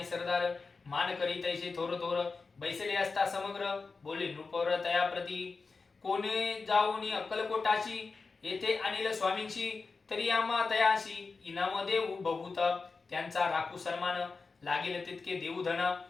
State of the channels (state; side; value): quieter; right; 4.3 dB